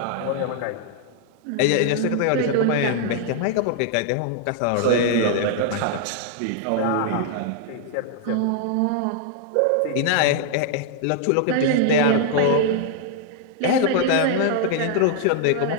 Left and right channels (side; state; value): both; different; correlation 0.00